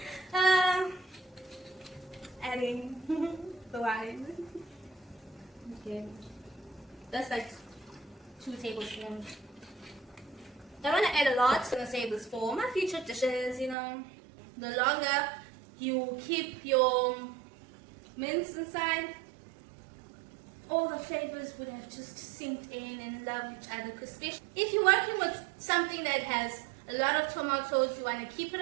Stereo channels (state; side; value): drops out; left; at 13.8 s